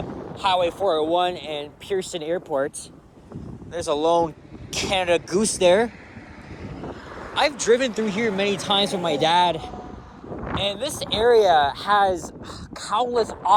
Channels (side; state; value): both; identical; correlation 1.00